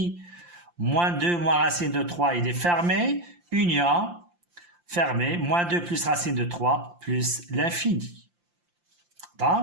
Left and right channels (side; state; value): left; late; 5.8 ms